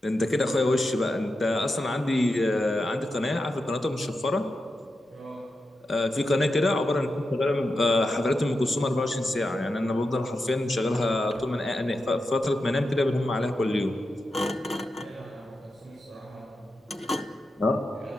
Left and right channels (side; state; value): both; normal; correlation 0.89